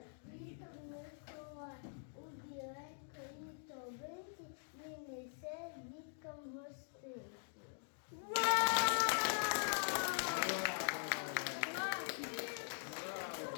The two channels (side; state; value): right; silent; digital silence